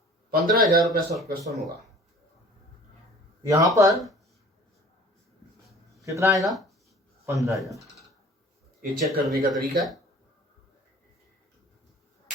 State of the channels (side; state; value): both; normal; correlation 0.47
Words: 15,000 रुपये सब्सक्रिप्शन होगा। यहां पर कितना आएगा? 15,000। ये चेक करने का तरीका है।